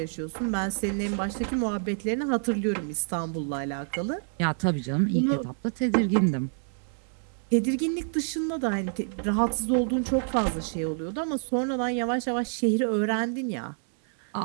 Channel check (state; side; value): silent; left; 60 dB below the other